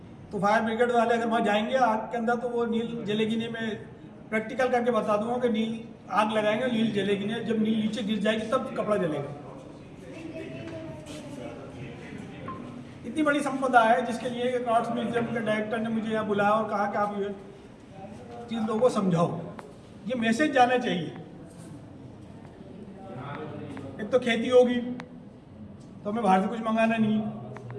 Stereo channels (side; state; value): both; identical; correlation 1.00